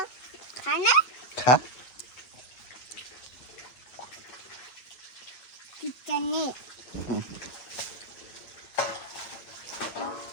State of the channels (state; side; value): late; right; 8.6 ms